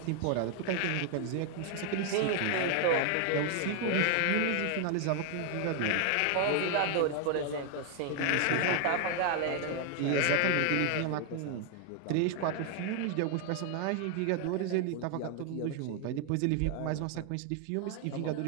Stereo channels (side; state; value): both; different; correlation 0.00